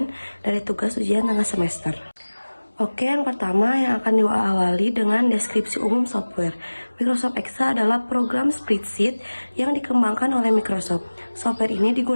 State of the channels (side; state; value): both; inverted; correlation -1.00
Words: dari tugas ujian tengah semester. Oke, yang pertama yang akan diawali dengan deskripsi umum software. Microsoft Excel adalah program spreadsheet yang dikembangkan oleh Microsoft. Software ini